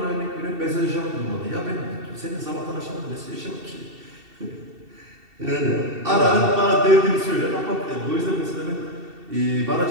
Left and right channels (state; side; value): late; left; 2.7 ms